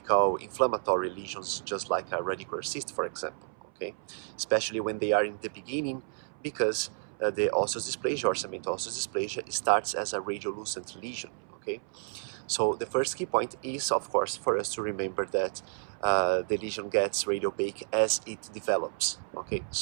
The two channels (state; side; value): silent; left; 57 dB below the other